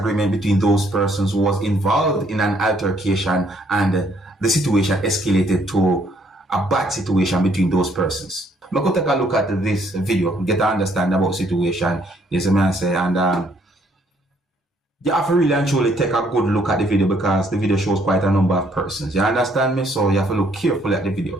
between those persons who was involved in an altercation, and the situation escalated to a bad situation between those persons. I'm going to take a look at this video, get to understand about the situation, yes, I say, and you have to really and truly take a good look at the video, because the video shows quite a number of persons. You understand me? So you have to look carefully at the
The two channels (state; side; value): normal; both; correlation 0.67